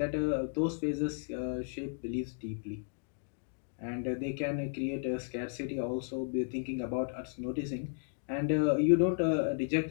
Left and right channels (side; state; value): right; silent; digital silence